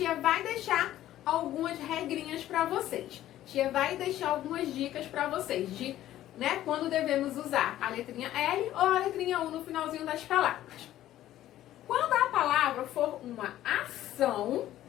vai deixar algumas regrinhas para vocês. Tia vai deixar algumas dicas para vocês de, quando devemos usar a letrinha L ou a letrinha U no finalzinho das palavras. Quando a palavra for uma ação,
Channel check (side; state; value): right; quieter; 13.4 dB